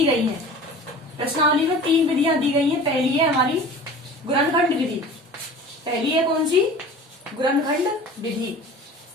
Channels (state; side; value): normal; both; correlation 0.40